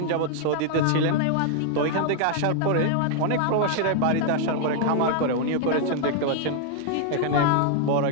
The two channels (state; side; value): different; both; correlation 0.00